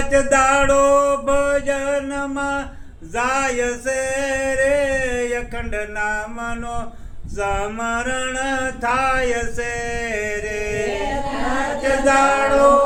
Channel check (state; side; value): identical; both; correlation 1.00